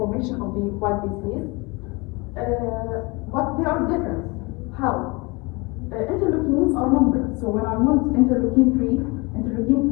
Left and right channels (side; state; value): right; quieter; 26.5 dB